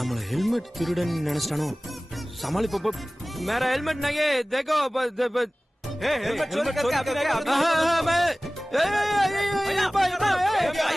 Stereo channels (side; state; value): both; normal; correlation 0.98